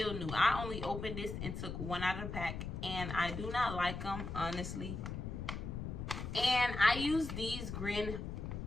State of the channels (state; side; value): noise; left; rumble, 5 dB below the sound